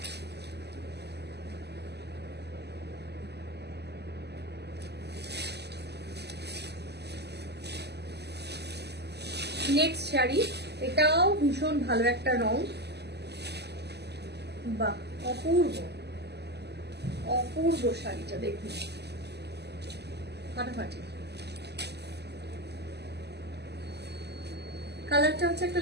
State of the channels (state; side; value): late; left; 0.49 ms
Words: নেক্সট শাড়ি, এটাও ভীষণ ভালো একটা রং, বাহ, অপূর্ব অপূর্ব শাড়িটা দেখুন, ফাটাফাটি। কালারটা হচ্ছে একটা